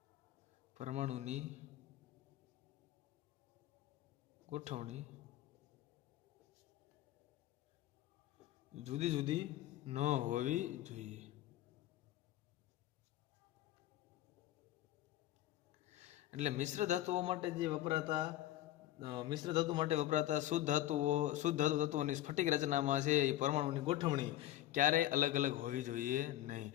એટલે મિશ્ર ધાતુ માટે વપરાતા શુદ્ધ ધાતુ તત્વોની સ્ફટિક રચનામાં છે એ પરમાણુની ગોઠવણી ક્યારેય અલગ અલગ હોવી જોઈએ નહીં.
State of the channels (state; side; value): quieter; right; 13.9 dB